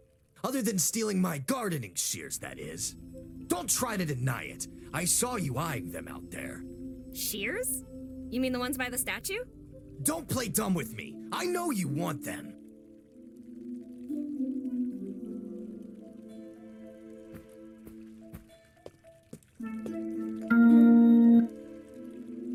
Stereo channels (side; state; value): both; identical; correlation 1.00